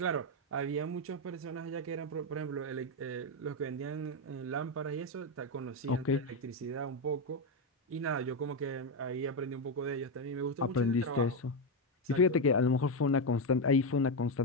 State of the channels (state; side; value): normal; both; correlation 0.07